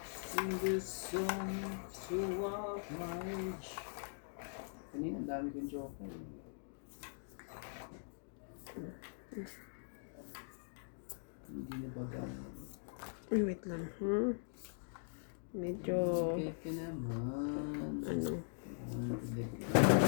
In the sun, so of my age. Kanina, ang dami kong joker. Hindi na baga. Ay, wait lang. Medyo... Okay ka naman. Ano?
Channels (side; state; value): right; silent; digital silence